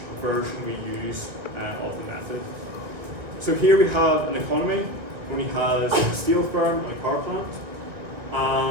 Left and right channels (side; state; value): left; late; 1.8 ms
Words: version we use of the method. So here we have an economy only has a steel firm and a car plant,